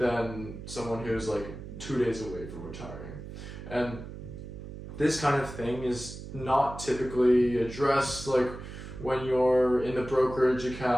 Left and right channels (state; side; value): noise; right; hum, 11 dB below the sound